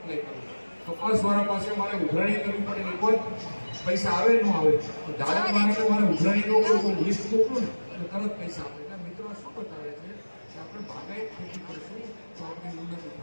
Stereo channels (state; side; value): inverted; both; correlation -1.00